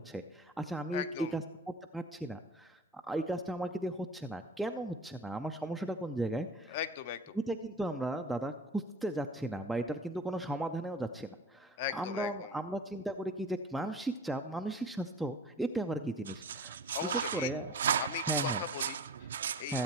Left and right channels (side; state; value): both; normal; correlation 0.39